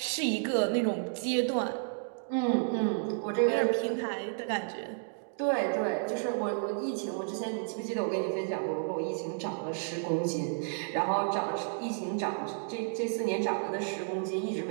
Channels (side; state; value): left; silent; digital silence